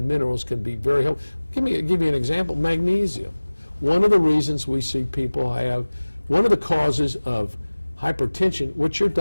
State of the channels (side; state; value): both; inverted; correlation -1.00